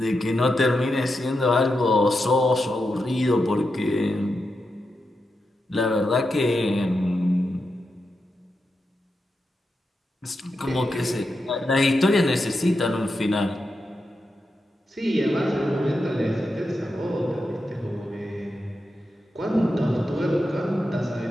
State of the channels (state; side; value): normal; both; correlation 0.87